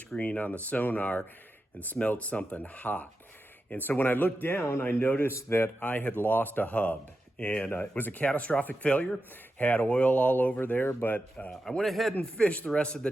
on the sonar and smelled something hot. And so when I looked down, I noticed that I had lost a hub. And it was a catastrophic failure, had oil all over there, but I went ahead and fished the rest of the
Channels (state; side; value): normal; both; correlation 0.90